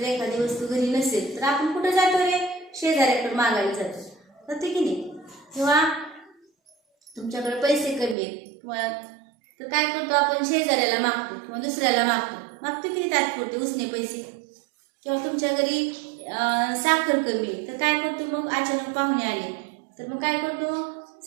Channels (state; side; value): drops out; left; at 8.2 s